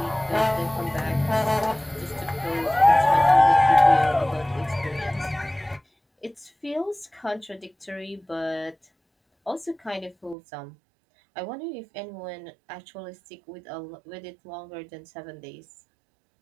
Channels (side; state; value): left; drops out; at 10.4 s